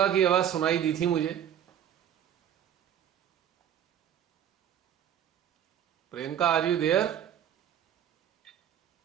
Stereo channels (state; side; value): quieter; left; 9.8 dB